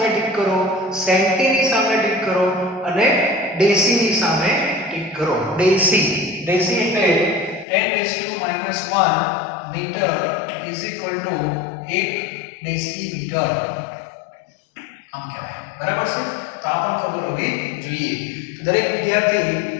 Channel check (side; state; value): right; drops out; at 7.7 s